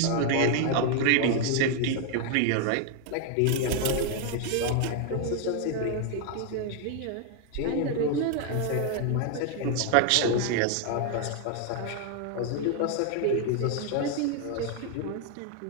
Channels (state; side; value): different; both; correlation 0.00